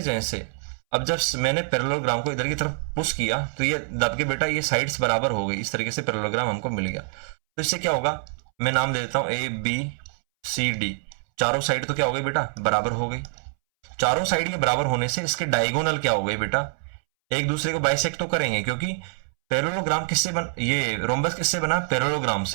चेंज से अब जब मैंने पैरेललोग्राम को इधर की तरफ पुश किया तो ये दब के बेटा ये साइड्स बराबर हो गई, इस तरीके से पैरेललोग्राम हमको मिल गया। तो इससे क्या होगा, मैं नाम दे देता हूँ ए बी सी डी, चारों साइड तो क्या हो गई बेटा, बराबर हो गई। चारों साइड के बराबर होने से इसके डायगोनल क्या हो गए बेटा, एक दूसरे को बाइसेक्ट तो करेंगे, क्योंकि पैरेललोग्राम किससे बन, ये रोम्बस किससे बना, पैरेललोग्राम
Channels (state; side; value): silent; left; 62 dB below the other